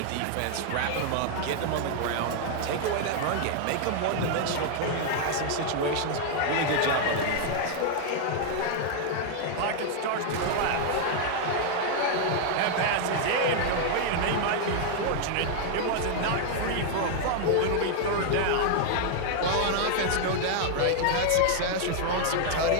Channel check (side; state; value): both; different; correlation 0.00